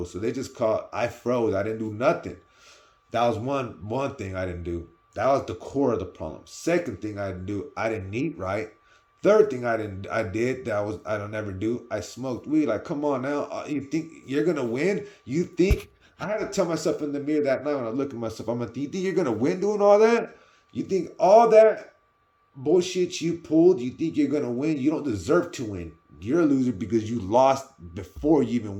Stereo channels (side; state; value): both; identical; correlation 1.00